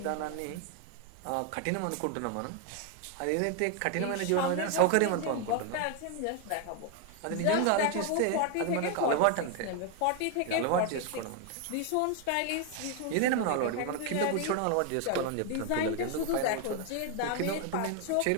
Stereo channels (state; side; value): different; both; correlation 0.01